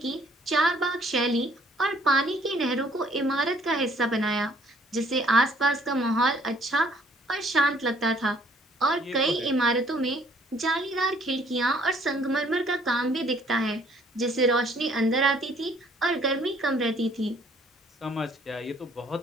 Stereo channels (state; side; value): normal; both; correlation 0.61